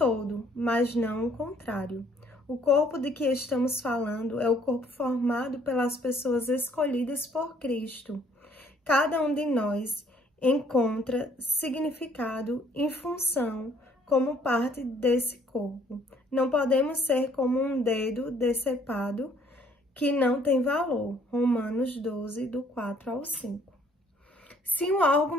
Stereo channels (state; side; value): normal; both; correlation 0.62